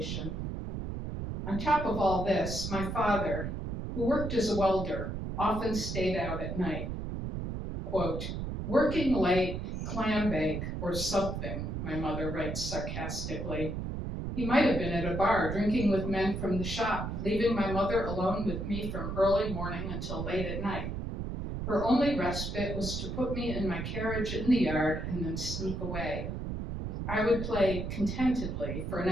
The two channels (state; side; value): noise; right; rumble, 4 dB below the sound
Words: On top of all this, my father, who worked as a welder, often stayed out at night. Quote, working late, clam bake, or something, my mother writes sarcastically. He might have been at a bar drinking with men from the shop, leaving my mother alone with me from early morning until late at night. Her only respite was to put me in my carriage in the yard and then sneak away. I would play contentedly for an